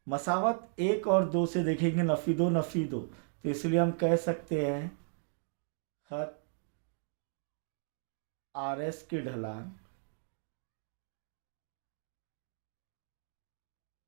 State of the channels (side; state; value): left; silent; digital silence